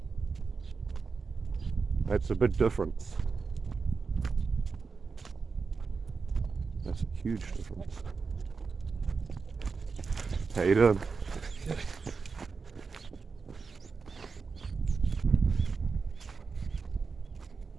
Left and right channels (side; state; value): left; quieter; 4.9 dB